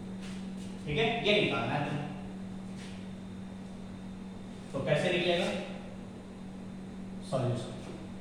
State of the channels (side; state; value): both; identical; correlation 1.00